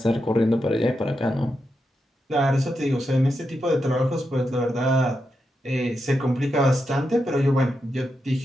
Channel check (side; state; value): both; normal; correlation 0.86